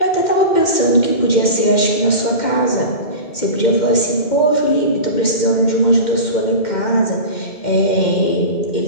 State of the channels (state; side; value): late; right; 2.1 ms